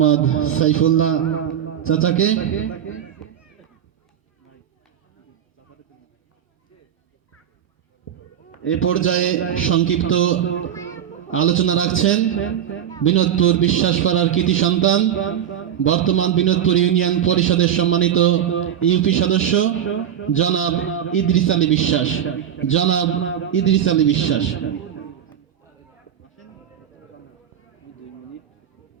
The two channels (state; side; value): quieter; left; 9.7 dB